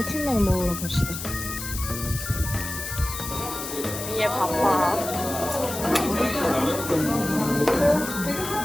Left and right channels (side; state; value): left; noise; hiss, 7 dB below the sound